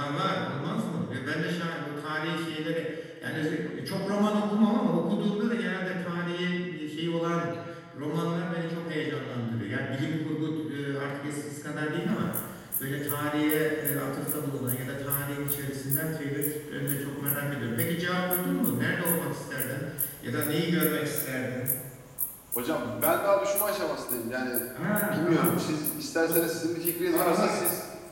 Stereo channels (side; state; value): both; identical; correlation 1.00